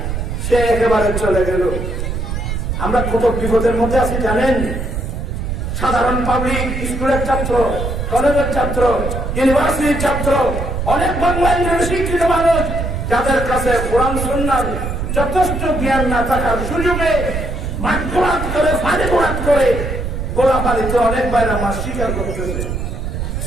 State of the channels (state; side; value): noise; right; rumble, 3 dB below the sound